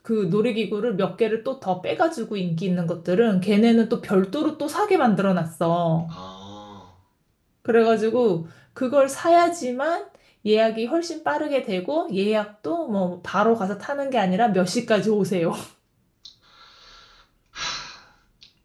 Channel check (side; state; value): both; identical; correlation 1.00